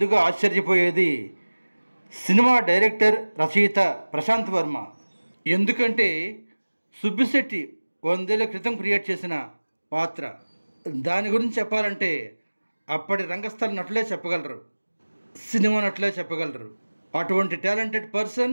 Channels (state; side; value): inverted; both; correlation -1.00